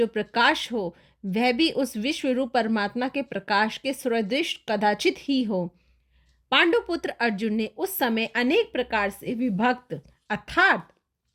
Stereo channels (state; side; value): identical; both; correlation 1.00